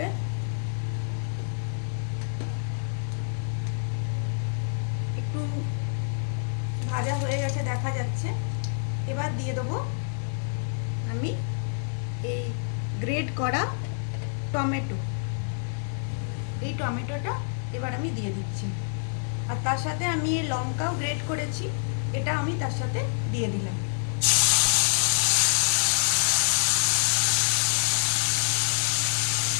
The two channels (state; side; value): silent; right; 60 dB below the other